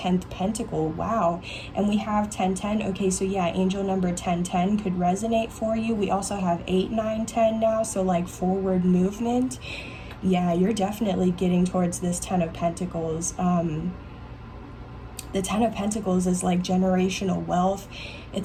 Pentacle. Wow. And we have 1010. Okay, so yeah, angel number 1010 could resonate for you. We also have 8, 9, 10 now. So like, forward movement. Yeah, you're definitely getting towards this 10 of Pentacles. The 10 of Pentacles is like generational wealth.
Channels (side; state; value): both; identical; correlation 1.00